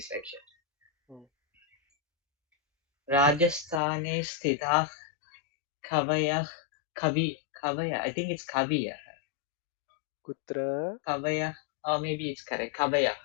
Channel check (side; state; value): right; drops out; at 3.8 s